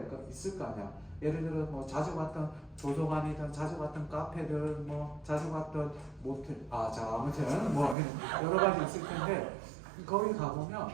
있을 거 아니야. 예를 들어 뭐 자주 갔던 도서관이든 자주 갔던 카페든 뭐 자주 갔던 모텔 아무튼 뭐 여러 가지 있을 텐데 거기 가면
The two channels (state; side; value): drops out; left; at 8.0 s